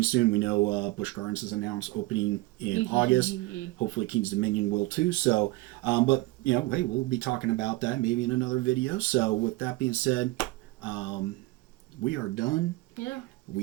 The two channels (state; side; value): quieter; left; 20.2 dB